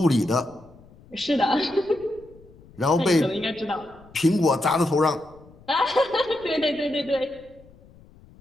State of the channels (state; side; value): noise; left; rumble, 25 dB below the sound